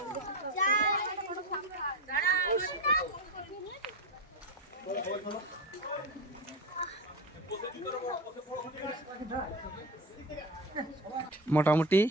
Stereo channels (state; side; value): normal; both; correlation 0.21